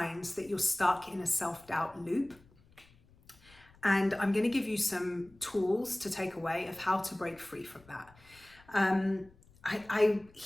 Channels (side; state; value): left; noise; rumble, 27 dB below the sound